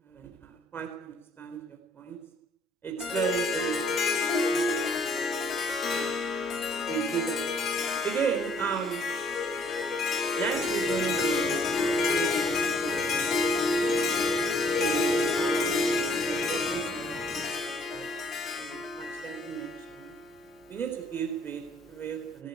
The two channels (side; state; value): both; normal; correlation 0.61